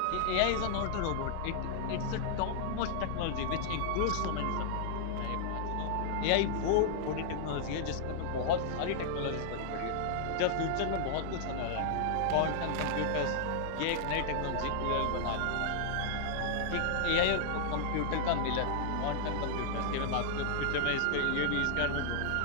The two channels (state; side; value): different; both; correlation -0.01